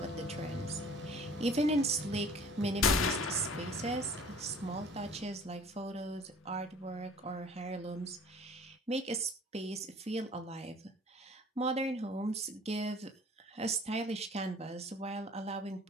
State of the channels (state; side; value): normal; both; correlation 0.49